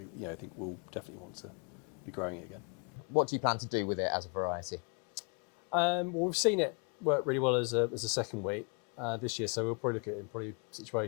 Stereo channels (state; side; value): quieter; right; 36.6 dB